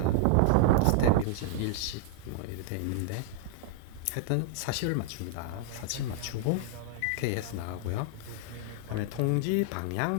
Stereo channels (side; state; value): both; different; correlation 0.00